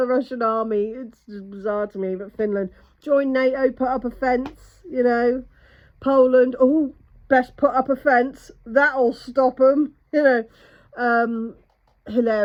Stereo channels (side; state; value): both; identical; correlation 1.00